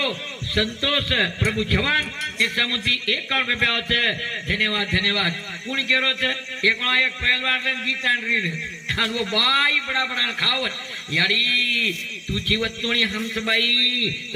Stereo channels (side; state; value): both; identical; correlation 1.00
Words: संतोष प्रभु जवान 151 रुपया છે धन्यवाद धन्यवाद कौन केरो છે एकला एक पहलवान ने गीतान रीड और वो बाई बड़ा बड़ा खावत यारी तू जीवत तोणी हमस बाई